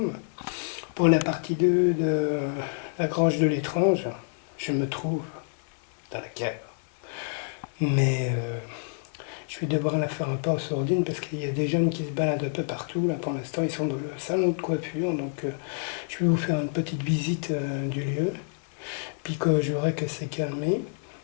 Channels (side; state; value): right; silent; 59 dB below the other